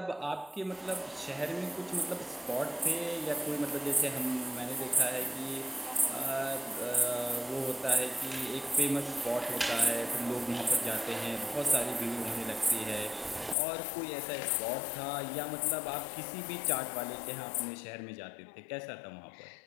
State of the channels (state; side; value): drops out; right; at 13.6 s